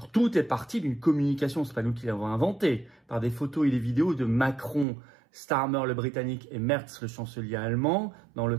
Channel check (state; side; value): drops out; left; at 4.9 s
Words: tout est parti d'une communication, c'est pas nous qui l'avons inventé, par des photos et des vidéos de Macron, Starmer le Britannique et Merz le chancelier allemand, dans le